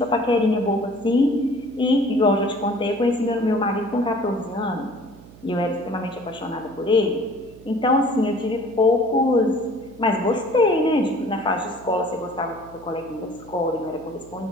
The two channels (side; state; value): right; noise; hum, 21 dB below the sound